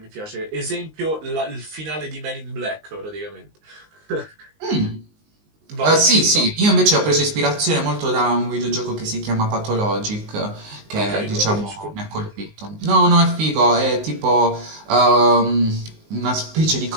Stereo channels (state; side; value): late; left; 19 ms